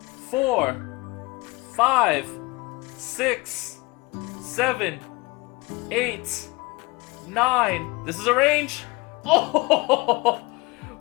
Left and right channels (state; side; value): quieter; right; 24.0 dB